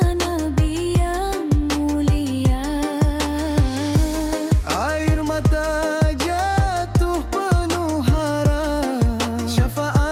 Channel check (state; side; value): identical; both; correlation 1.00